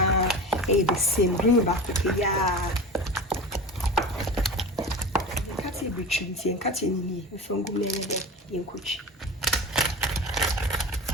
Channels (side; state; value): both; normal; correlation 0.31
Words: the same green back ya. Kati between nti en kati ni ni from go me de ye nkochi.